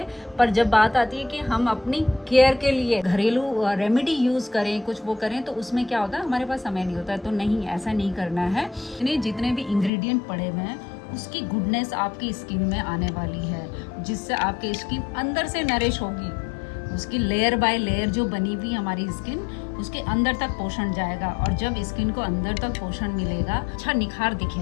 पर जब बात आती है कि हम अपनी केयर के लिए घरेलू रेमेडी यूज़ करें, कुछ वो करें, तो उसमें क्या होता है, हमारे पास समय नहीं होता है। तो नहीं, ऐसा नहीं करना है। जितने भी इंग्रेडिएंट पड़े हुए हैं उसकी गुडनेस आपकी स्किन में आने वाली है, जिससे आपकी स्किन अंदर से नरिश होगी। उसकी लेयर बाय लेयर जो बनी हुई हमारी स्किन, उसके अंदर तक पोषण जाएगा, और जब स्किन को अंदर तक पोषण मिलेगा, अच्छा निखार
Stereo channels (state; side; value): drops out; right; at 9.9 s